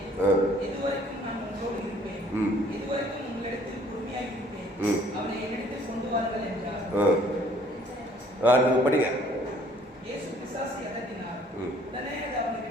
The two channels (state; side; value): normal; both; correlation 0.59